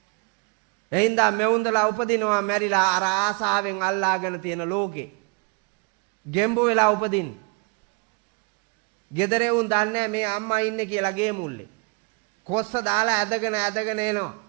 එයින්දා මෙවුන්දලා උපදිනවා මැරිලා අර ආසාවෙන් අල්ලාගෙන තියෙන ලෝකේ. ගෙම්බු වෙලා උපදින්නේ. ගෙදර උන් දන්නේ මේ අම්මා ඉන්නේ කියලා ගේ මුල්ලේ. කොස්ස දාලා ඇදගෙන එනවා.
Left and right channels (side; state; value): left; quieter; 31.3 dB